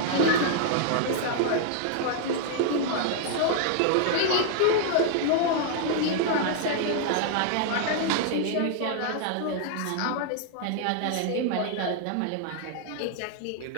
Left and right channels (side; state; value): both; different; correlation 0.00